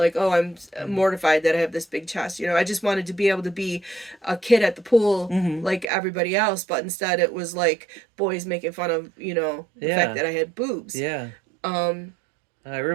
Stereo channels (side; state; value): left; drops out; at 5.9 s